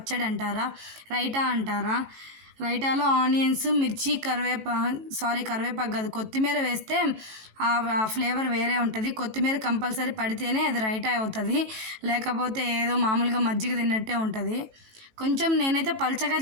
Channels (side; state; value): left; late; 18 ms